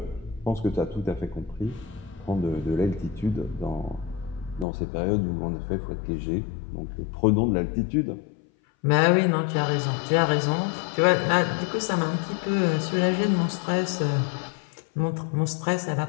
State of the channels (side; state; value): right; drops out; at 4.7 s